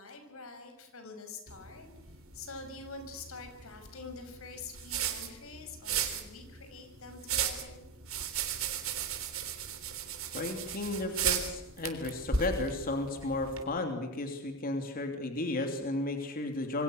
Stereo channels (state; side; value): normal; both; correlation 0.18